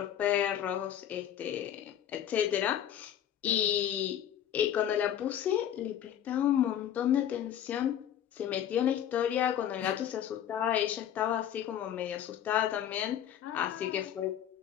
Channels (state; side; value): quieter; right; 10.4 dB